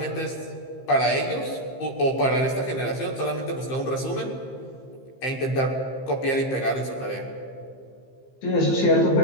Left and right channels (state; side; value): late; right; 15 ms